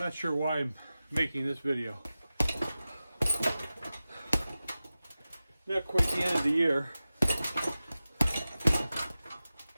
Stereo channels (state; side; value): inverted; both; correlation -0.95